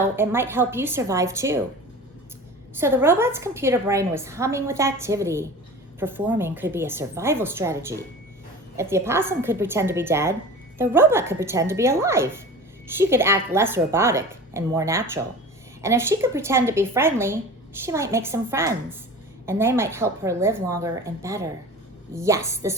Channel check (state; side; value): normal; both; correlation 0.36